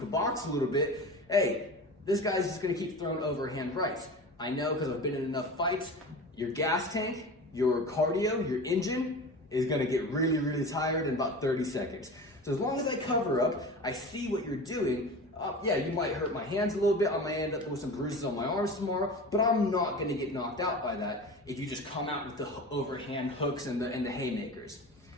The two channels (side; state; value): both; normal; correlation 0.33